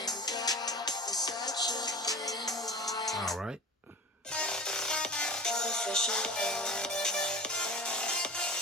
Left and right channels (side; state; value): both; normal; correlation 0.35